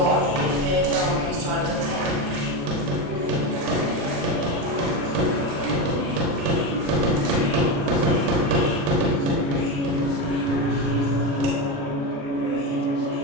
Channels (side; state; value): left; late; 36 ms